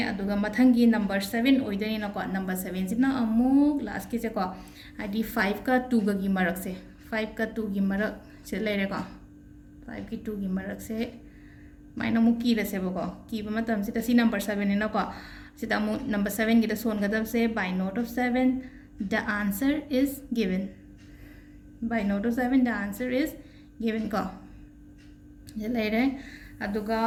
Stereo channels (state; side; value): identical; both; correlation 1.00